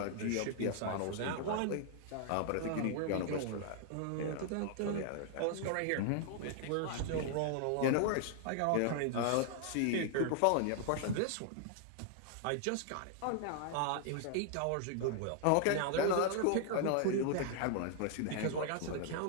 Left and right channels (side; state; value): both; different; correlation 0.00